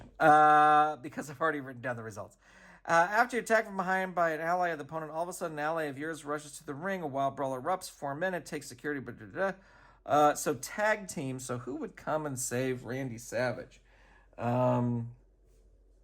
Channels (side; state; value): both; identical; correlation 1.00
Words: because I've already written down the results. After you attack from behind by an ally of the opponent, all of a sudden an ally of yours rushes to the ring. A wild brawl erupts. 4 minutes. Takes security. So tag team. So who would come and save Randy Savage? That